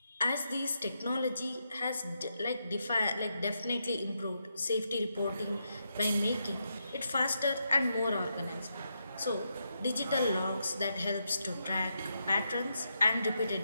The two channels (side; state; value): both; inverted; correlation -0.83